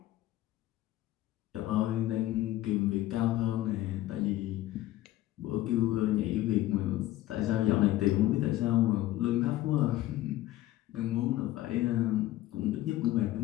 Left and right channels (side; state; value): right; quieter; 15.3 dB